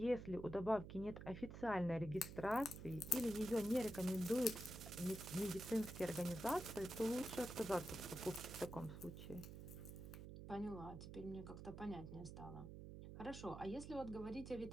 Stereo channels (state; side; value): noise; right; hum, 10 dB below the sound